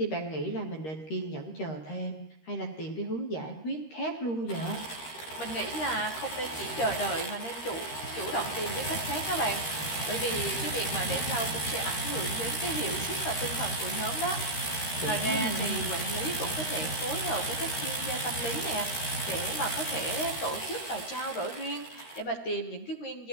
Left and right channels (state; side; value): late; right; 13 ms